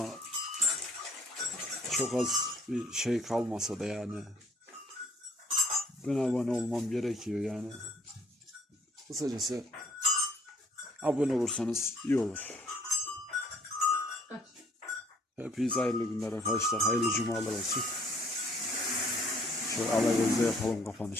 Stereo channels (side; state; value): both; normal; correlation 0.60